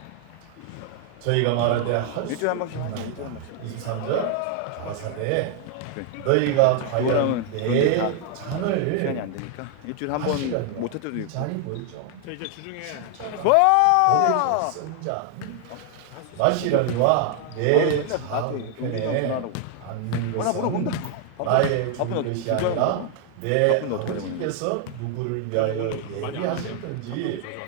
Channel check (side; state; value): both; different; correlation 0.00